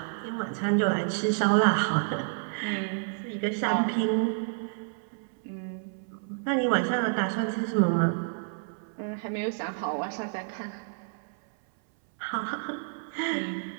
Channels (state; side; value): silent; left; 58 dB below the other